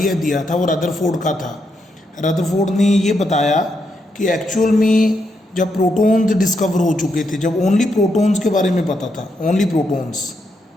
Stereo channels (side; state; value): both; normal; correlation 0.80